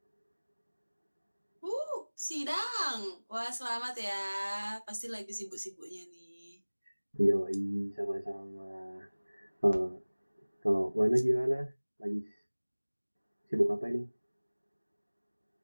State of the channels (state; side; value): inverted; both; correlation -1.00